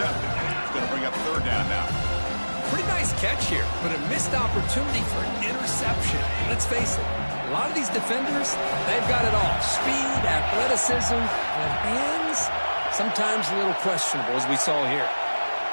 It's going to bring up 3rd down now. Pretty nice catch here, but a missed opportunity for an interception. Let's face it, a lot of these defenders, they've got it all. Speed, athleticism, but hands, sometimes a little questionable, as we saw here.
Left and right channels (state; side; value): inverted; both; correlation -1.00